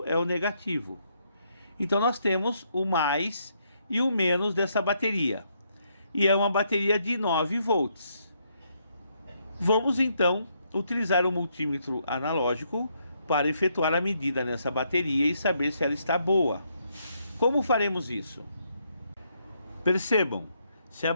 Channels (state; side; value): inverted; both; correlation -0.75